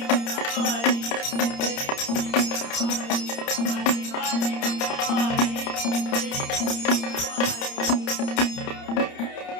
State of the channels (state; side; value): late; right; 30 ms